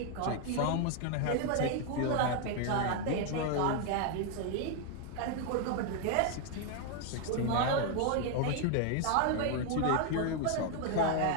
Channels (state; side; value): different; both; correlation 0.00